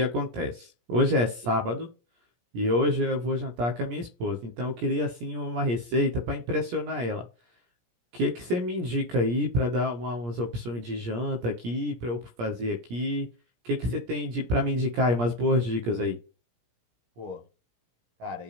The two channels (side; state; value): left; late; 17 ms